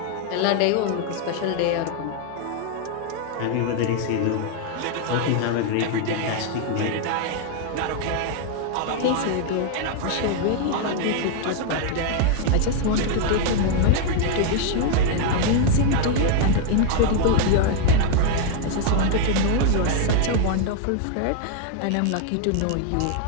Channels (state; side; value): different; both; correlation 0.00